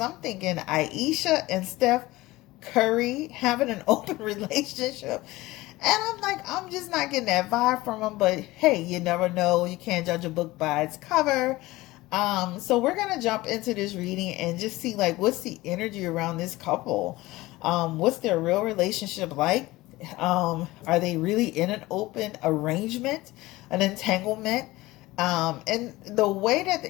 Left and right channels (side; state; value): right; quieter; 19.2 dB